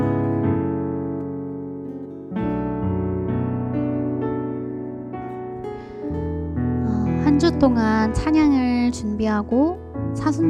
주 동안 찬양을 준비하고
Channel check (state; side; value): identical; both; correlation 1.00